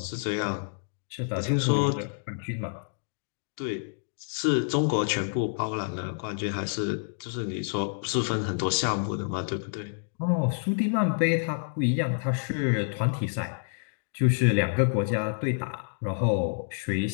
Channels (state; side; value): silent; right; digital silence